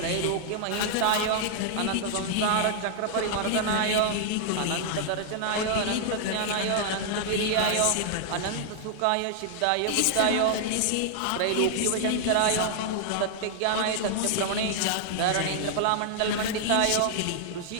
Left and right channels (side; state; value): both; different; correlation -0.01